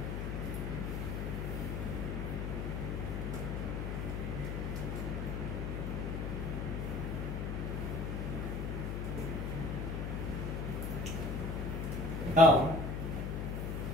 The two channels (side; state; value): left; noise; hum, 2 dB below the sound